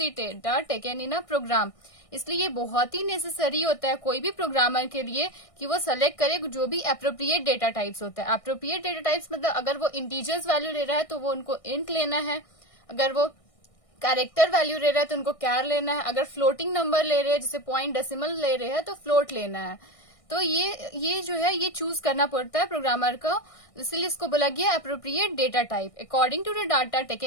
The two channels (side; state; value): right; late; 1.6 ms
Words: data taken in a program. इसलिए ये बहुत ही नेसेसरी होता है कोई भी प्रोग्रामर के लिए कि वो सेलेक्ट करे जो भी अप्रोप्रिएट डेटा टाइप्स होता है। अप्रोप्रिएट डेटा टाइप्स मतलब अगर वो इंटीजर्स वैल्यू ले रहा है तो वो उनको इंट लेना है, अगर वो कैरेक्टर वैल्यू ले रहा है तो उनको कैर लेना है, अगर फ्लोटिंग नंबर ले रहे हैं जैसे पॉइंट डेसिमल ले रहे हैं तो फ्लोट लेना है। तो ये जो है ये चूज करना पड़ता है प्रोग्रामर को, इसलिए इसको बोला गया appropriate data type according to the data